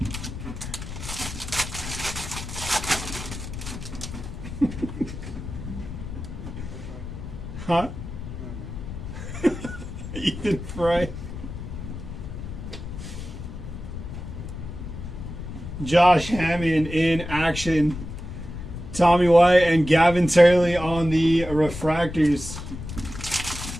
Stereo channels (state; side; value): noise; left; rumble, 9 dB below the sound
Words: Huh? Ethan Fry. Josh Hammond in action. Tommy White and Gavin Turley on the refractors.